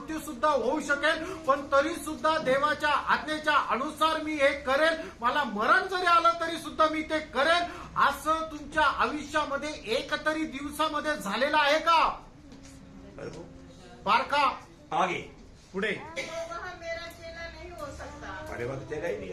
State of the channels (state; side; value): identical; both; correlation 1.00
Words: सुद्धा होऊ शकेल, पण तरी सुद्धा देवाच्या आज्ञेच्या अनुसार मी हे करेल. मला मरण जरी आलं तरी सुद्धा मी ते करेल. असं तुमच्या आयुष्यामध्ये एक तरी दिवसामध्ये झालेलं आहे का? बारका आगे तो पुढे. वह मेरा चेला नहीं हो सकता. अरे बात चेला ही नहीं,